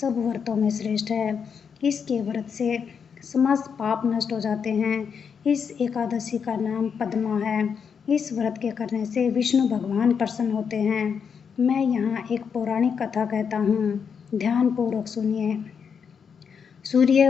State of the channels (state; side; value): quieter; right; 6.7 dB